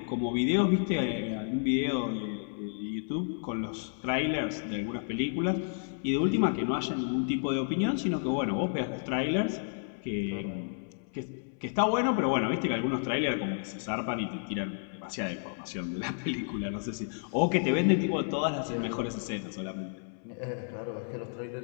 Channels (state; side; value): silent; right; 57 dB below the other